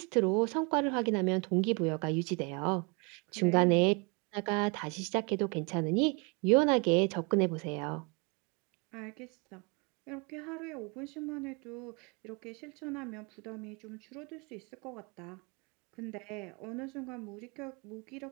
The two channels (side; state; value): left; quieter; 31.2 dB